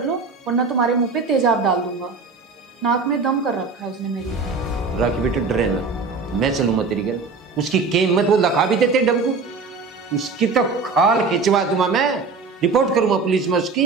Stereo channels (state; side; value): quieter; left; 4.5 dB